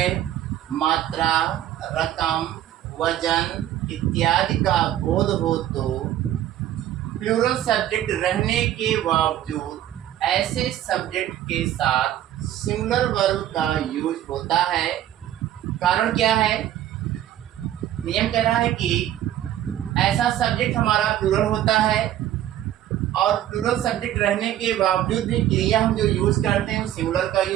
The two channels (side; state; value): left; quieter; 12.2 dB